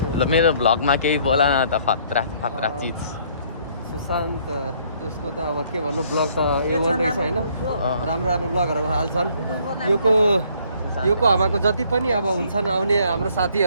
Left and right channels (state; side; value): inverted; both; correlation -0.63